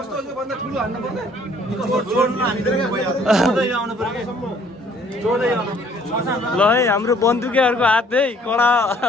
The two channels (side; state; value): both; normal; correlation 0.59